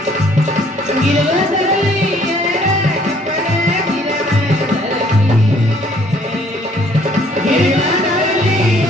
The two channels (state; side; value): normal; both; correlation 0.61